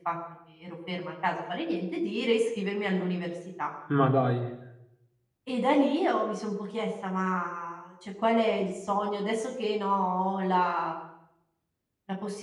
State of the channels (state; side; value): identical; both; correlation 1.00